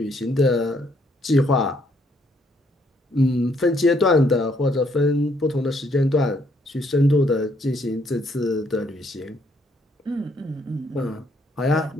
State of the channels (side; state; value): both; normal; correlation 0.69